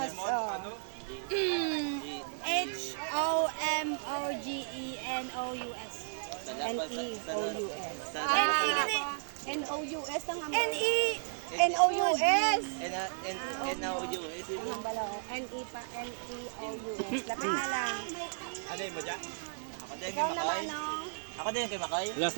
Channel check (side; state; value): left; silent; 55 dB below the other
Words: Oh. H-O-M-O-G-E-N-O-U-S. N-E-O-U-S. N-E-N-O-U-S ang N-E. N-O-U-S. N-O-U-S. Ang bala oh. N-E pa. N-E-O-U-S. Lapit na lang. Ano yung mo dyan? Ako din Ikaw kay naman Makoy. no. Ako din kay Makoy. Last